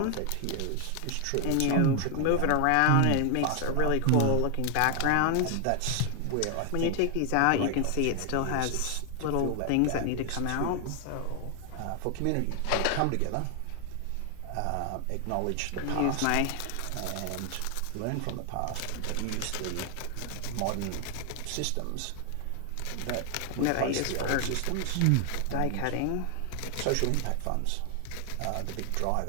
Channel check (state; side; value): different; both; correlation 0.00